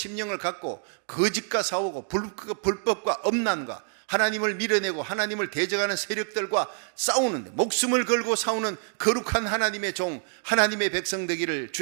갖고 거짓과 싸우고 불법과 엄난과 하나님을 밀어내고 하나님을 대적하는 세력들과 싸우는데 목숨을 걸고 싸우는 거룩한 하나님의 종, 하나님의 백성 되기를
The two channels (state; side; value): silent; left; 60 dB below the other